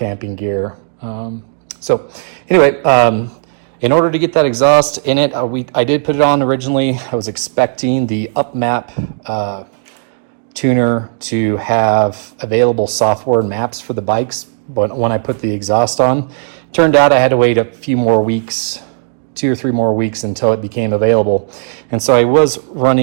gear. So anyway, in order to get that exhaust in it, I did put it on originally. I was expecting the UpMap tuner to have available software maps for the bikes when I put the exhaust on. Turned out I had to wait a few more weeks, 2 or 3 more weeks until it became available. And so I was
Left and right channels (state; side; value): silent; left; digital silence